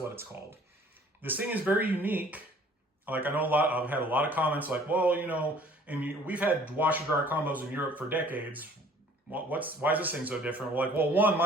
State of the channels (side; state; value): both; normal; correlation 0.53